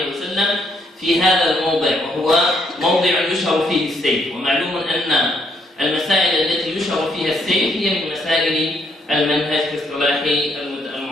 وسلم في هذا الموضع، وهو موضع يشهر فيه السيف. ومعلوم أن المسائل التي يشهر فيها السيف هي من مسائل المنهج في اصطلاح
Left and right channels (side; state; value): both; normal; correlation 0.71